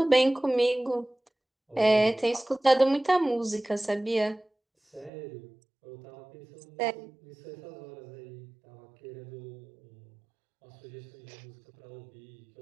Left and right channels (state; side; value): drops out; left; at 5.1 s